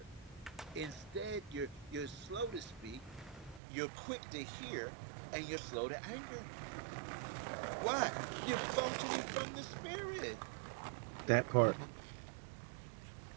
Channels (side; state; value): left; drops out; at 3.6 s